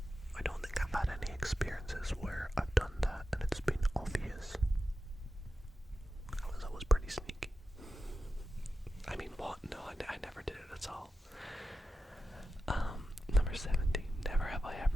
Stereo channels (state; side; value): normal; both; correlation 0.91